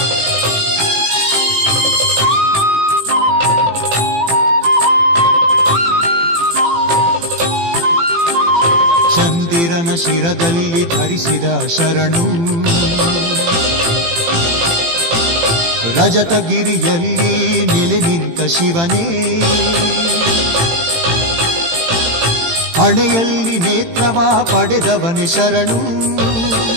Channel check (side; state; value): left; late; 18 ms